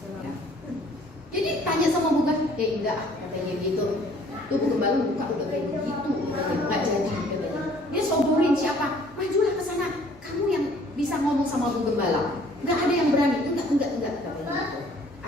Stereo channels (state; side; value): normal; both; correlation 0.57